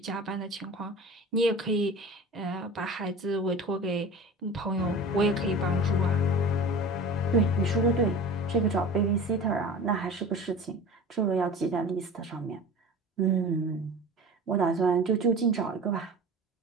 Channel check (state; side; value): normal; both; correlation 0.36